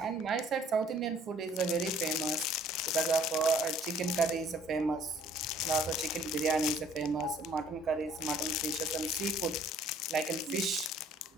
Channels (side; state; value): both; normal; correlation 0.57